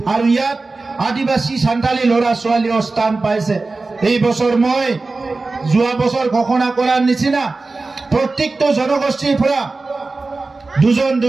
আৰু ইয়াত আদিবাসী সান্তালী ল'ৰা ছোৱালীও স্থান পাইছে এই বছৰ মই যোৱা বছৰ ঘোষণা কৰাৰ নিচিনা প্ৰত্যেকটো জনগোষ্ঠীৰ পৰা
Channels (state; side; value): quieter; left; 3.6 dB